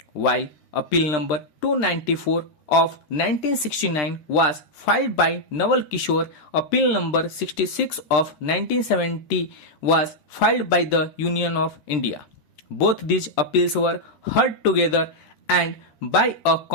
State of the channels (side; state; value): right; late; 13 ms